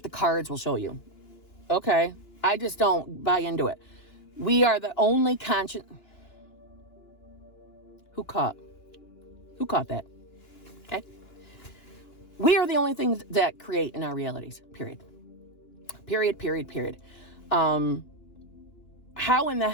cards will show you. Okay. I just don't buy into it. We are the only conscious. Who caught that? Okay. We are the only things that create in our realities. Period. How in the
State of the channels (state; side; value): late; right; 2.9 ms